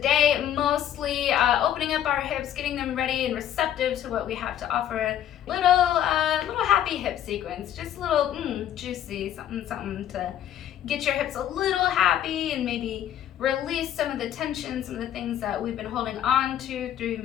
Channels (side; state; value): right; quieter; 10.9 dB